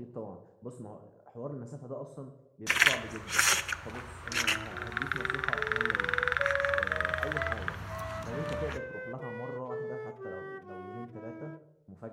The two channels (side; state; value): both; identical; correlation 1.00